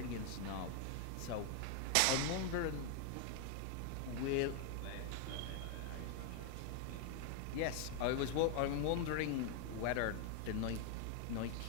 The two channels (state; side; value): different; both; correlation 0.00